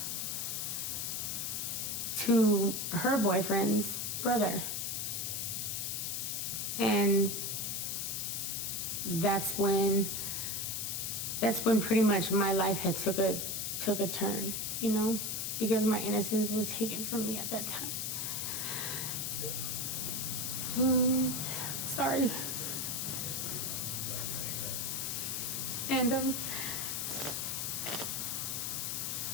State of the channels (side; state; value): left; noise; hiss, 1 dB below the sound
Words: to her boyfriend's brother. And that's when pretty much my life had took a turn, you know, because my innocence was taken from me at that time. Sorry.